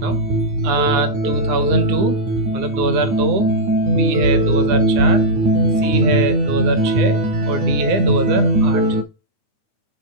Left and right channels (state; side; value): late; left; 9.7 ms